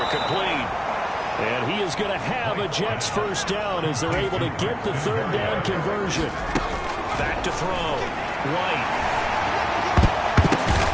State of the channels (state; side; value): identical; both; correlation 1.00